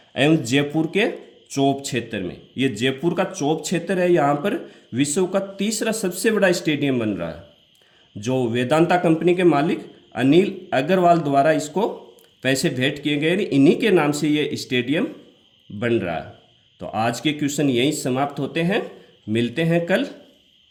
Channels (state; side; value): identical; both; correlation 1.00